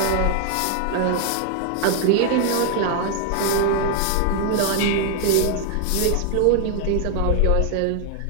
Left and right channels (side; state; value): both; different; correlation 0.00